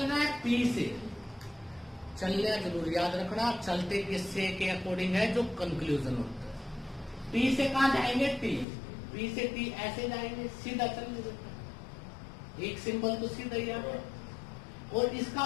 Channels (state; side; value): drops out; right; at 8.7 s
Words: है? पी से चलना जरूर याद रखना। चलते किससे के अकॉर्डिंग है? जो कंक्लूजन होता है। पी से कहां जाएंगे? टी। पी से टी ऐसे जाएंगे, सीधा चलने। एक सिंबल तो सीधा ही आ गया। और